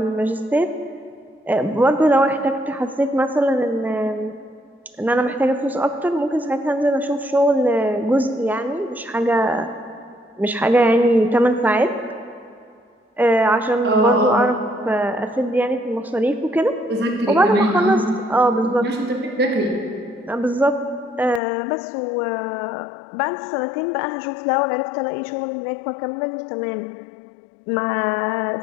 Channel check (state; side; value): drops out; right; at 21.4 s